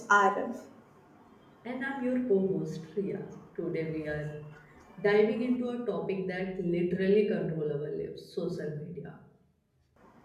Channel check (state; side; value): identical; both; correlation 1.00